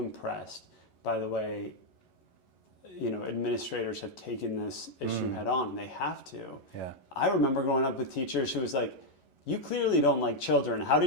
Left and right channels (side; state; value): right; late; 11 ms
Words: by the way, administrators have taken this issue head on, and they have to. Yeah. I remember growing up with teachers who was like, you clearly don't like children. How